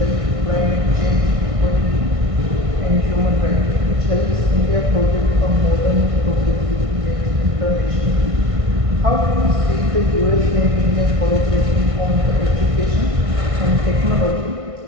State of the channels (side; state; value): left; late; 1.6 ms